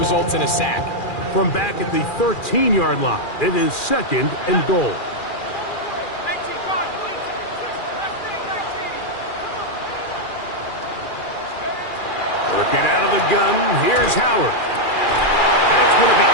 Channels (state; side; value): late; right; 2.4 ms